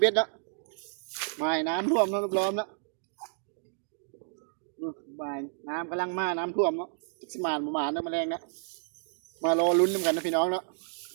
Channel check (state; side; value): silent; left; digital silence